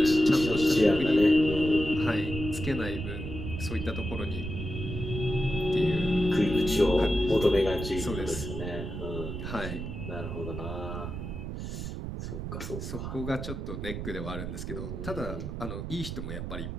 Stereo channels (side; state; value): right; noise; rumble, 6 dB below the sound